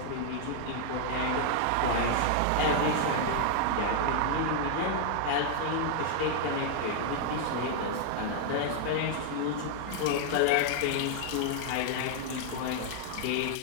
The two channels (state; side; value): different; both; correlation -0.01